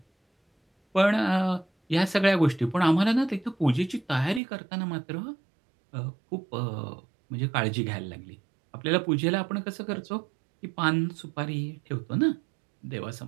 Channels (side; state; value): left; drops out; at 4.4 s